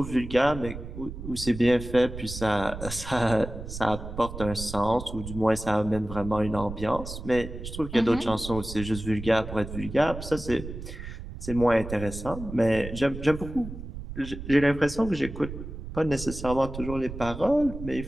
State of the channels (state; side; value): noise; right; rumble, 10 dB below the sound